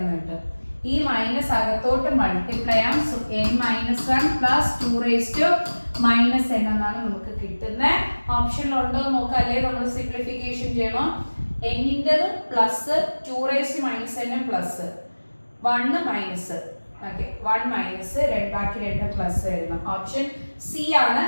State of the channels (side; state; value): both; inverted; correlation -1.00